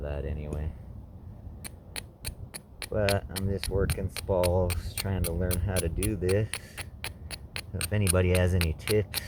that anyway. But I'm just working spalls, trying to learn how to do this. So if anybody has any tips,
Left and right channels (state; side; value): identical; both; correlation 1.00